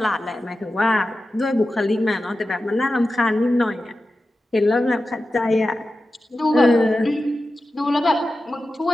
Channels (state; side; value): normal; both; correlation 0.93